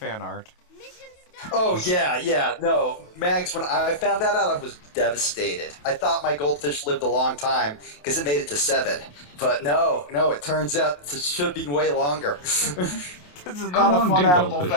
art. Oh yeah, no, Mags. When I found that out, I was devastated. I thought my goldfish lived a long time because it made it to 7, but no, it turns out it should be way longer. This is How not a long fun do animal goldfish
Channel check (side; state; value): right; late; 28 ms